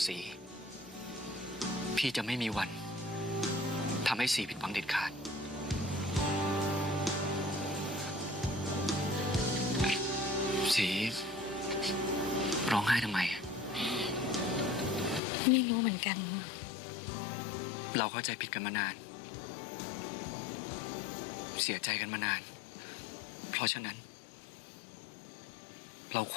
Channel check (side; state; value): right; drops out; at 15.2 s